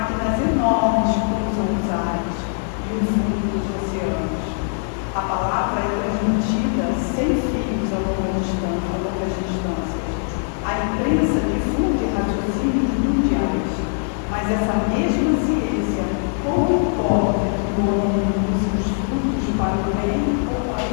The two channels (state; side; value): silent; right; 60 dB below the other